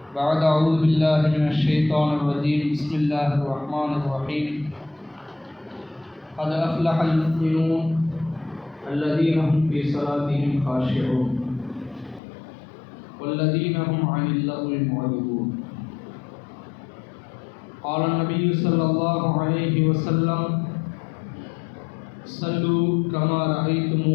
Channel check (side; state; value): right; drops out; at 12.2 s